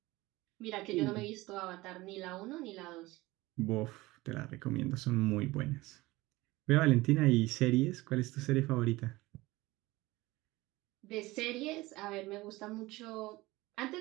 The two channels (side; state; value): left; quieter; 20.0 dB